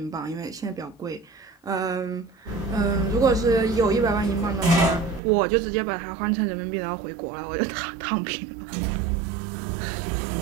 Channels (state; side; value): drops out; left; at 5.2 s